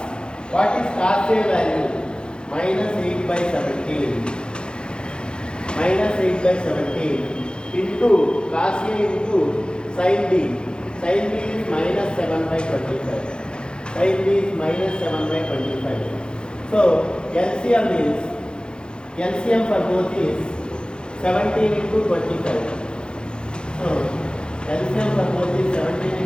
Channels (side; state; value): right; late; 0.050 ms